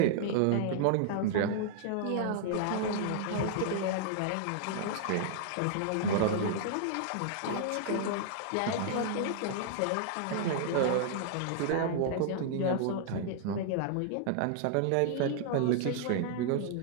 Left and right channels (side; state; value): both; different; correlation -0.01